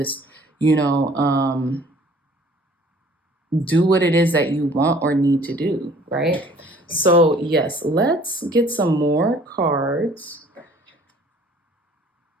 do what it is that you want or need to do, right? So yes, let's get some more cards.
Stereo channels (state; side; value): normal; both; correlation 0.54